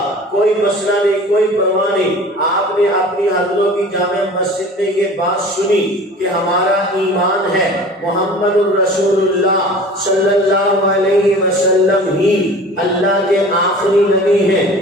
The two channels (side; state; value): both; normal; correlation 0.42